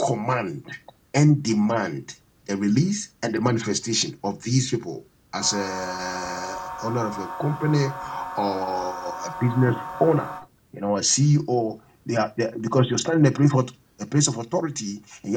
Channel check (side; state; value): both; identical; correlation 1.00